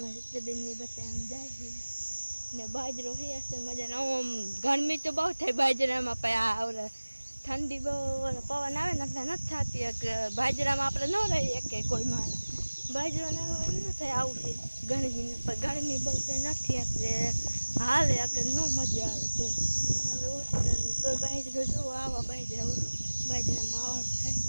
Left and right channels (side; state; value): both; inverted; correlation -1.00